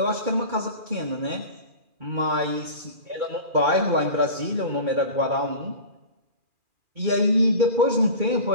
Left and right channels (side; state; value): left; late; 2.4 ms